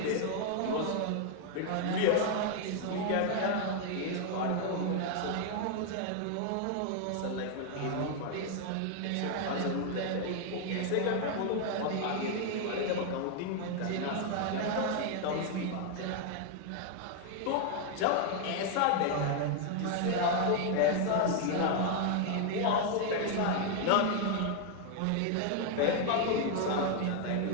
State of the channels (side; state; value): both; different; correlation 0.00